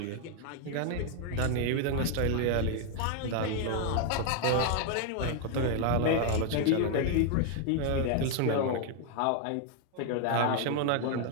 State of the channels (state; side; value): different; both; correlation 0.00